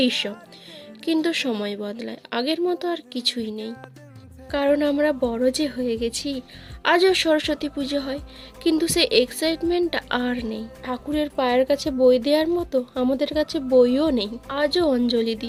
এইসব। কিন্তু সময় বদলায়, আগের মতো আর কিছুই নেই, কারণ আমরা বড় যে হয়ে গেছি। আজও সরস্বতী পুজো হয়, কিন্তু সেই এক্সাইটমেন্টটা আর নেই। ঠাকুরের পায়ের কাছে বই দেওয়ার মতো আমাদের কাছে বইও নেই। আজও অঞ্জলি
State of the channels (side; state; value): both; identical; correlation 1.00